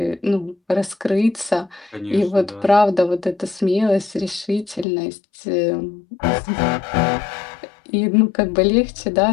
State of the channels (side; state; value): right; drops out; at 4.9 s